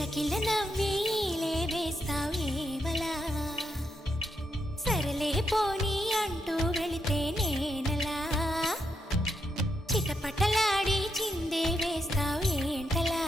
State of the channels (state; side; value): normal; both; correlation 0.80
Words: నవ్వేలే వేస్తావేవలా సరలే పోనీ అంటూ వెళితే నేనలా చిటపటలాడి చిందే వేస్తావేంటలా